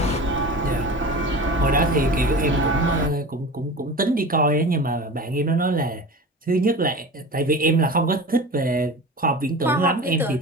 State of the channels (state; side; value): normal; both; correlation 0.33